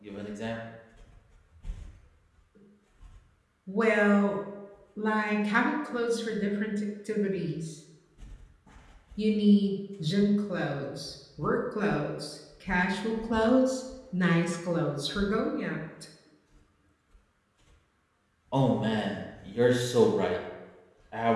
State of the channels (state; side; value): identical; both; correlation 1.00